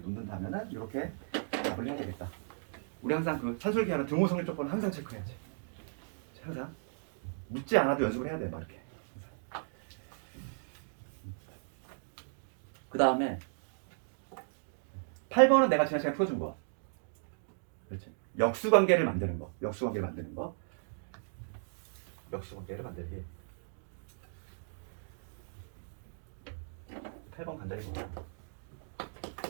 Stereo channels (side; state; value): left; silent; digital silence